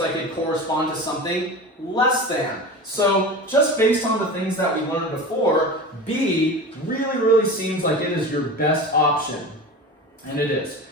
it corresponds to something less than. So just based on the things that we learned before, B really seems like it is your best option. And it is.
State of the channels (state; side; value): normal; both; correlation 0.31